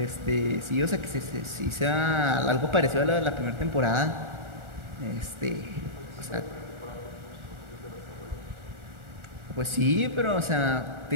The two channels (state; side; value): late; left; 1.4 ms